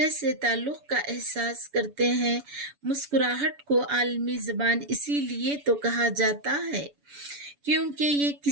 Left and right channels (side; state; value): left; late; 7.0 ms